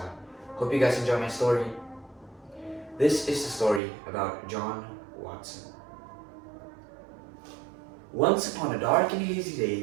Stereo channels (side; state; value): left; drops out; at 3.8 s